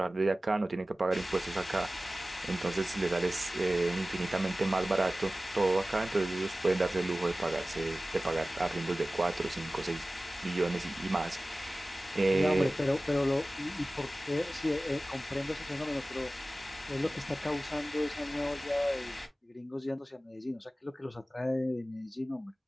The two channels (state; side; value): normal; both; correlation 0.97